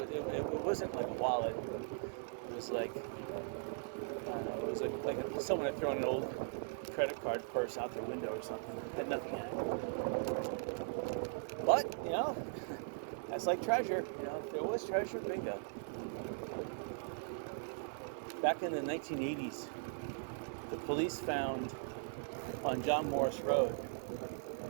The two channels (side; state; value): left; silent; 51 dB below the other